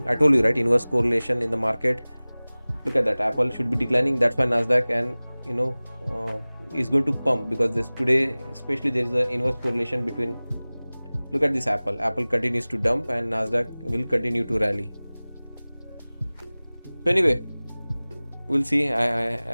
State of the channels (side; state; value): both; inverted; correlation -0.99